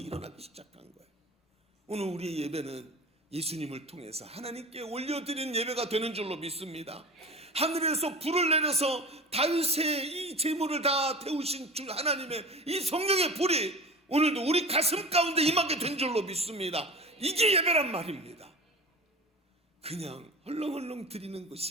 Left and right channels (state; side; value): normal; both; correlation 0.35